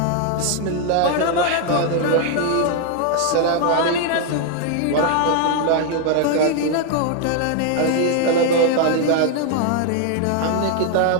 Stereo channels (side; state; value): both; different; correlation 0.00